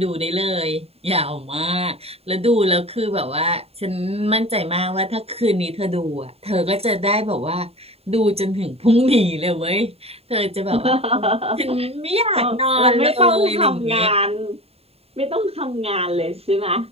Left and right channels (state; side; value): late; left; 0.29 ms